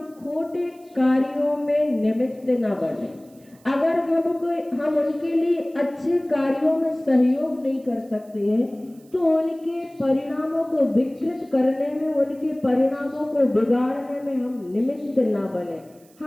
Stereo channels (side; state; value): right; noise; hiss, 30 dB below the sound